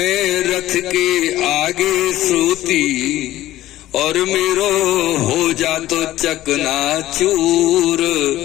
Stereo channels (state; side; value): quieter; right; 14.9 dB